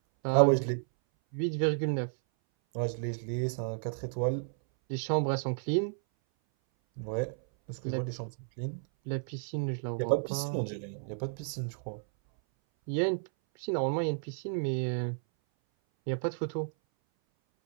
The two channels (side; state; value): left; silent; 56 dB below the other